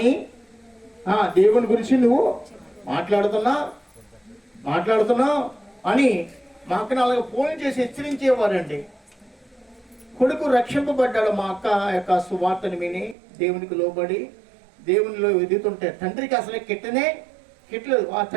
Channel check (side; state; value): left; drops out; at 13.2 s